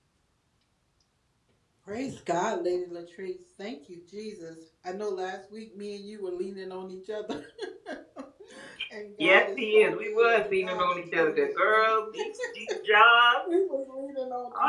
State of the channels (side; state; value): both; identical; correlation 1.00